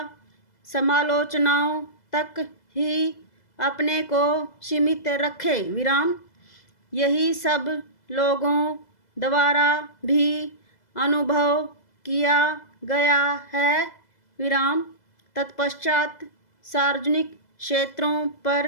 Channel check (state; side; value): late; right; 2.0 ms